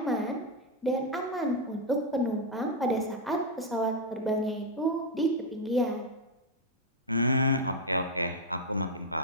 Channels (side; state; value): both; normal; correlation 0.02